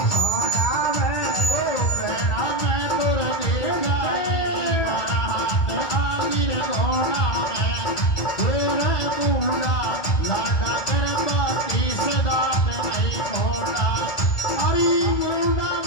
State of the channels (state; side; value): late; right; 1.8 ms